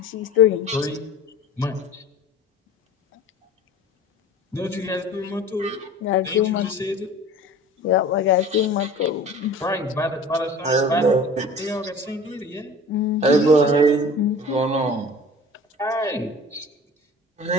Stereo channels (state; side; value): normal; both; correlation 0.41